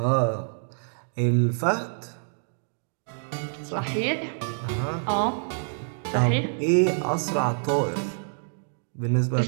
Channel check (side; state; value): left; silent; digital silence